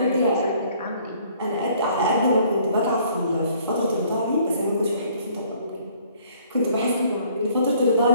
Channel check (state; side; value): inverted; both; correlation -0.60